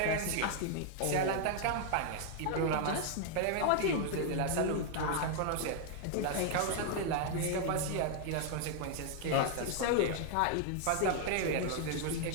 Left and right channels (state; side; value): different; both; correlation 0.00